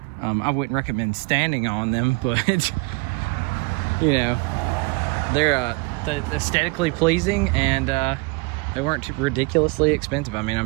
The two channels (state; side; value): quieter; left; 27.2 dB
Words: I wouldn't recommend standing on them, but you know, they're aesthetically pleasing, and they weren't too ridiculously expensive. I mean,